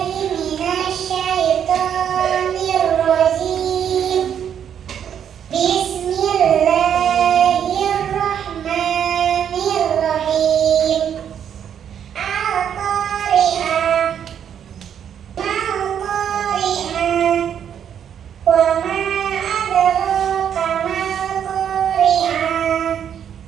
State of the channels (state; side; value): quieter; left; 8.8 dB